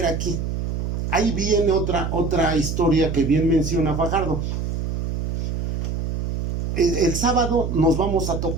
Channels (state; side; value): noise; right; hum, 2 dB below the sound